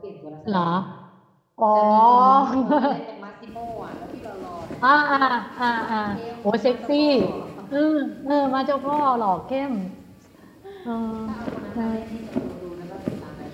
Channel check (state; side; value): identical; both; correlation 1.00